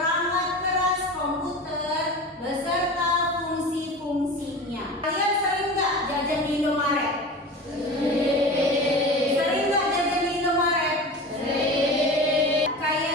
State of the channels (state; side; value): normal; both; correlation 0.32